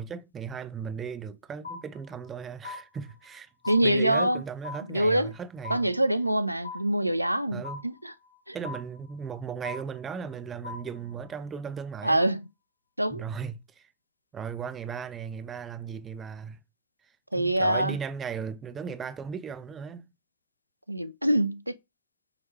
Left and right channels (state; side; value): inverted; both; correlation -0.71